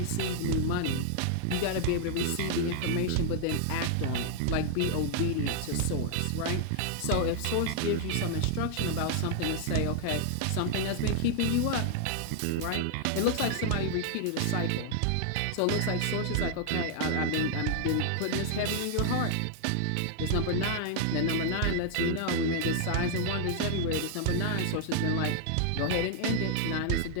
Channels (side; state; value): both; different; correlation 0.00